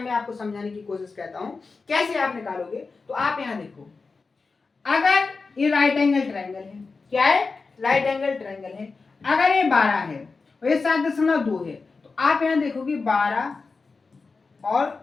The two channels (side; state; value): right; quieter; 4.3 dB